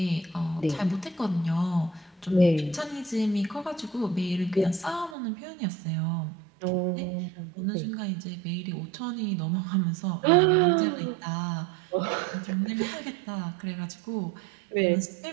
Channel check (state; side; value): drops out; left; at 5.2 s